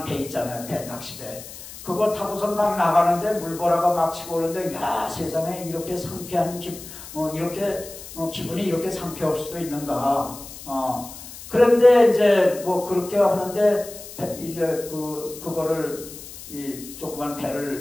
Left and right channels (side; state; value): left; noise; hiss, 14 dB below the sound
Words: 배 있잖아요. 배 낚시배. 그걸 타고선 막 나가는데 물보라가 막 치고 오는데 야 세상에 이렇게 상쾌한 기분이 이렇게 상쾌할 수도 있는가. 그런데 이제 뭐 그렇게 하는데 이제 그거를 이 조그만